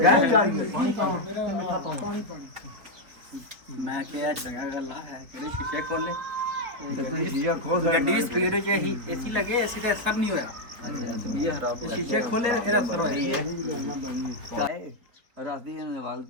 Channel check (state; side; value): late; left; 4.6 ms